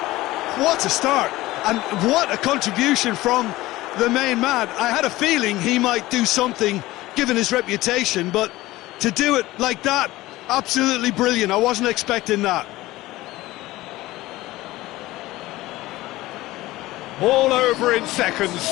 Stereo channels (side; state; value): right; quieter; 17.9 dB